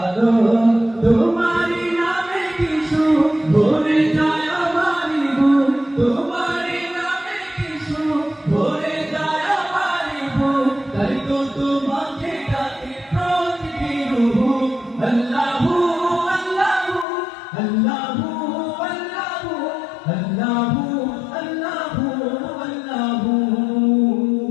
তোমারই নামে কিছু ভরে যায় আমারই বুক তোমারই নামে কিছু ভরে যায় আমারই বুক তাই তো তোমাকে ডাকি প্রতিদিন আল্লাহু আল্লাহু আল্লাহু আল্লাহু আল্লাহু আল্লাহু আল্লাহু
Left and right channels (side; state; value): right; drops out; at 17.1 s